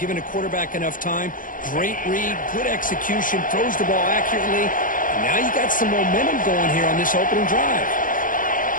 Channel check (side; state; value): right; late; 0.39 ms